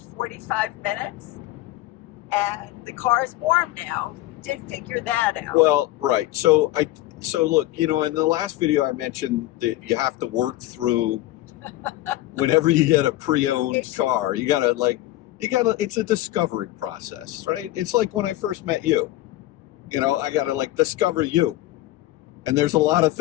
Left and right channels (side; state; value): right; quieter; 16.4 dB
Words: minutes, and the car is warm now. We did figure that out. Well, right. So look, in the last video I mentioned that you have to work through whenever you get a pre-owned car. You gotta it's a discovery process, right? It's like when I first met you. I gotta discover you. And there's a lot of